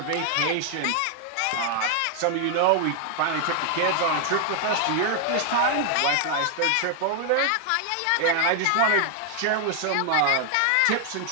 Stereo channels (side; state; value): both; different; correlation 0.00